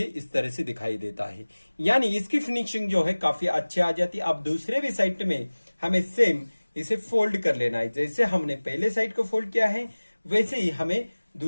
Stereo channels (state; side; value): inverted; both; correlation -1.00